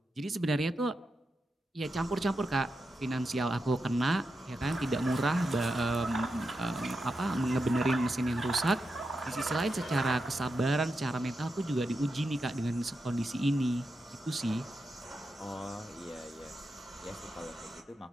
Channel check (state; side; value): normal; both; correlation 0.88